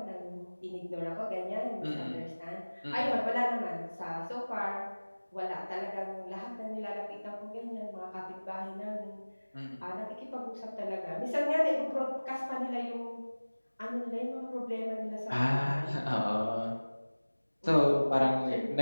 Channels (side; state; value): both; inverted; correlation -1.00